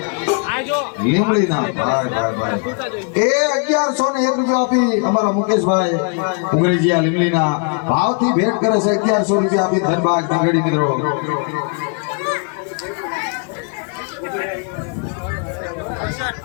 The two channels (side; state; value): right; quieter; 39.3 dB